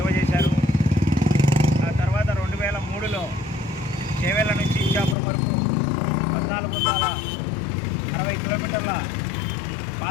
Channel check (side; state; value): right; drops out; at 5.2 s